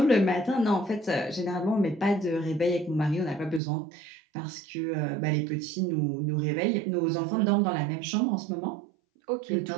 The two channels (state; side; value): drops out; left; at 3.6 s